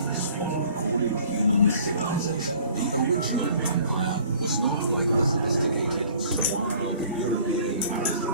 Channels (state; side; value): inverted; both; correlation -0.53